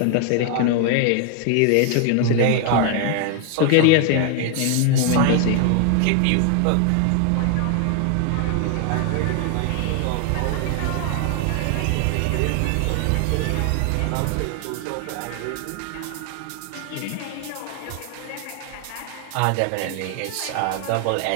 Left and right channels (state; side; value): different; both; correlation 0.00